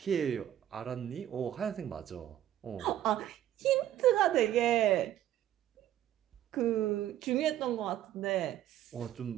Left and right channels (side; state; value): left; quieter; 12.1 dB